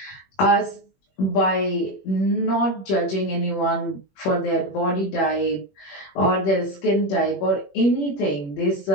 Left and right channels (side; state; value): right; late; 21 ms